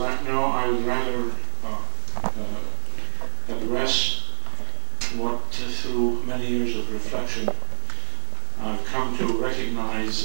now I would rather address what, through many years of reflection, I've come to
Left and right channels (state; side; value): silent; left; digital silence